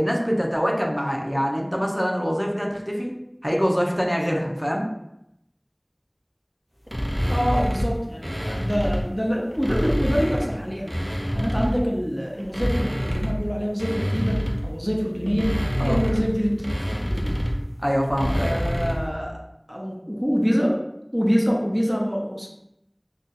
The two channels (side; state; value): both; identical; correlation 1.00